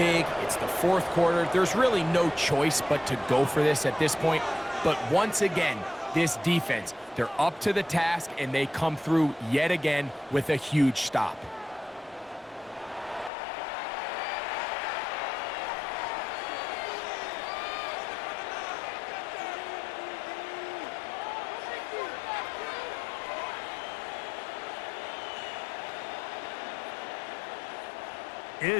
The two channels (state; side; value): drops out; right; at 13.3 s